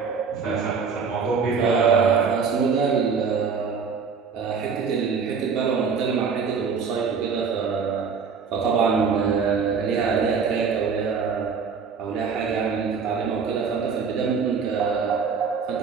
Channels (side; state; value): left; quieter; 5.7 dB